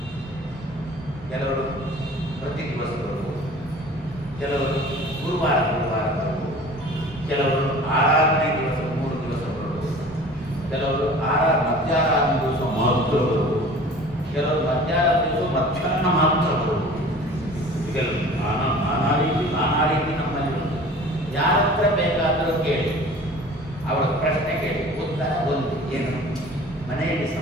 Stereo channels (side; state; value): both; normal; correlation 0.44